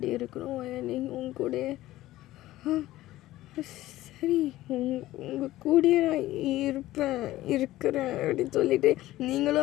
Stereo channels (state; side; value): quieter; right; 16.0 dB